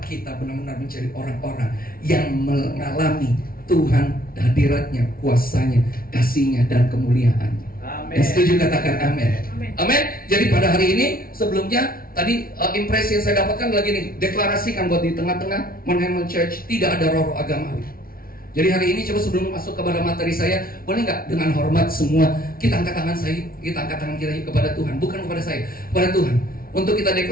kita benar-benar menjadi orang-orang yang mengalami Tuhan, hadiratnya, kuasanya, kasihnya, dan kemuliaannya. Amin. Yang setuju katakan amin. Amin. Jadi pada hari ini, sebelumnya tadi impresi yang saya dapatkan lagi nih, deklarasikan buat di tengah-tengah Mount Hermon Church tidak ada roh agamawi. Jadi hari ini coba sebelum masuk kepada materi saya, boleh nggak dengan hormat semua kita angkat tangan kita kepada Tuhan, bukan kepada saya, kepada Tuhan, untuk kita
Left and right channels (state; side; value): late; right; 0.43 ms